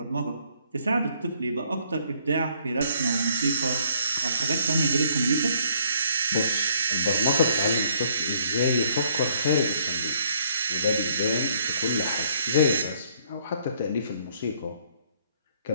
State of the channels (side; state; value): both; inverted; correlation -0.63